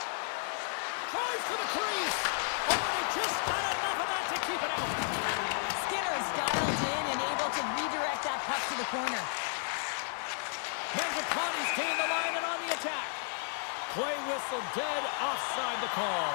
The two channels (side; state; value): right; silent; 56 dB below the other